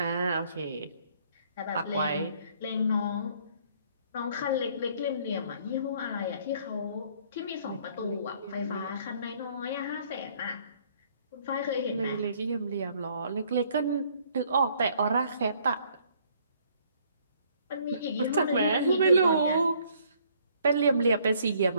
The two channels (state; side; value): inverted; both; correlation -0.63